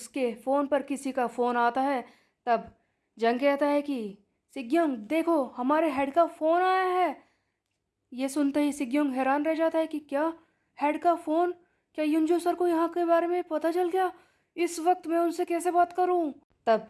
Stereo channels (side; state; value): both; identical; correlation 1.00